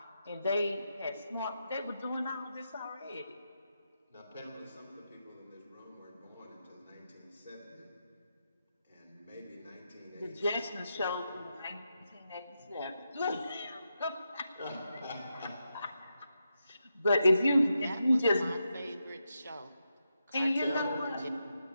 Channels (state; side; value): inverted; both; correlation -0.86